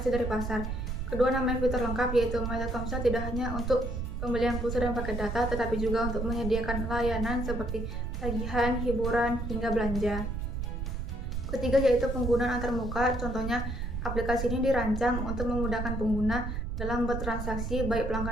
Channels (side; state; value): right; noise; rumble, 3 dB below the sound